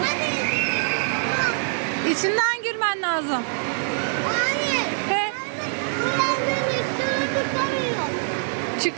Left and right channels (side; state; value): left; silent; 57 dB below the other